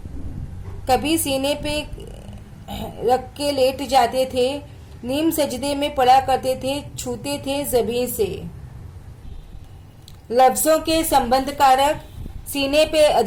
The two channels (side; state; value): both; identical; correlation 1.00